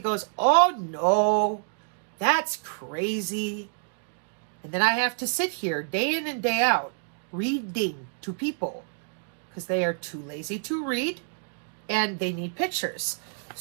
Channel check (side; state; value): left; silent; 60 dB below the other